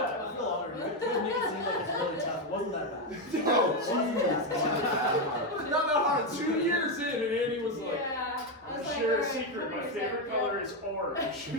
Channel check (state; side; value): normal; both; correlation 0.07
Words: I feel honored. You make it seem like it's really tough. It wasn't that bad. No, not that hard. 2 years in and Andy was like, share a secret, my favorite color is orange.